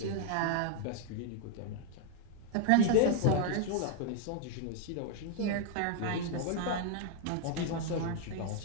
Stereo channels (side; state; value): both; different; correlation 0.00